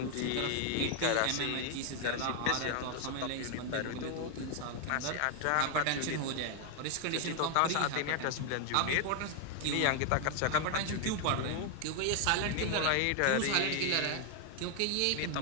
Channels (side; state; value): both; different; correlation 0.00